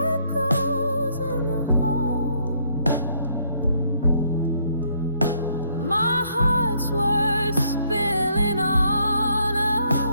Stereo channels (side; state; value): both; inverted; correlation -0.68